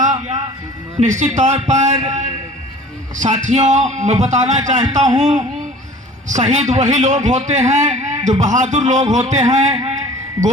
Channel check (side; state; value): both; normal; correlation 0.45